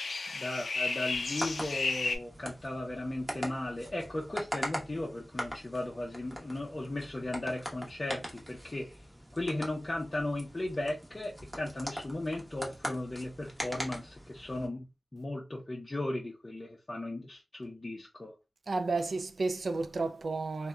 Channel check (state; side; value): normal; both; correlation 0.94